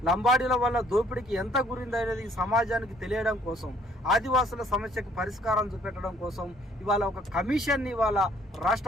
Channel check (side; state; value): both; normal; correlation 0.61